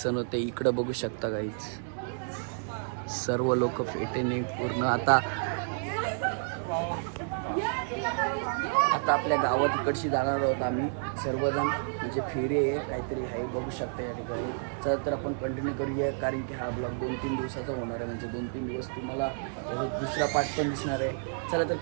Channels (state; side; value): silent; left; digital silence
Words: होते. इकडे बघू शकता गाईज, सर्व लोक पेटेने पूर्ण आता आपल्या गावात इकडची जाणार आहोत आम्ही सर्वजण. म्हणजे फेरी आहे काहीतरी आहे, बघू शकता या ठिकाणी. चला तर आपण कंटिन्यू करूया, कारण की हा ब्लॉग 2-3 दिवसाचा होणार आहे. म्हणजे 2-3 दिवस तुम्हाला दुसरा पार्ट पण दिसणार आहे. चला तर